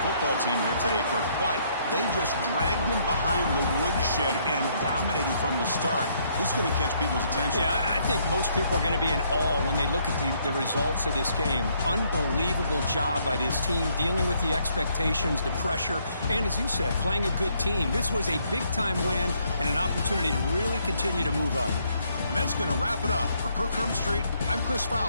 football team here today, Kirk, but they just dragged them behind the woodshed and dominated from the start. This is going to catch people's attention. Yeah, I think most people are going to be in awe when they look at the results of this game. Unbelievable job by this team, dealing with the expectations, the pressure, and as you said, playing a good team. This was a big-time win and an opportunity to really continue to move up. And that's going to wrap it up. For Kirk Street, I'm Chris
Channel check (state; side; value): inverted; both; correlation -0.70